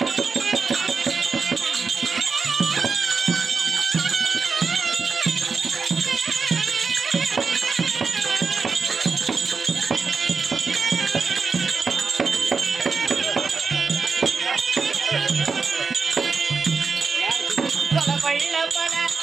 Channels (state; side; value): quieter; left; 5.0 dB